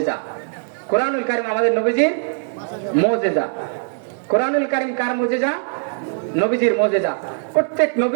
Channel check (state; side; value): silent; left; digital silence